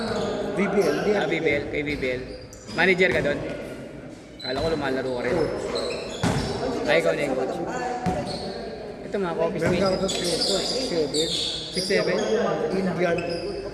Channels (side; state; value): both; identical; correlation 1.00